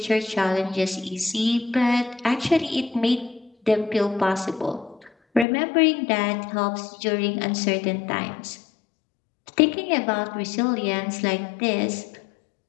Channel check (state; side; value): drops out; right; at 5.5 s